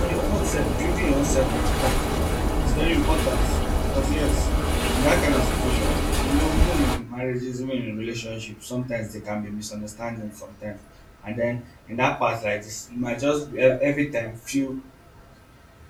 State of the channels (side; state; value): both; identical; correlation 1.00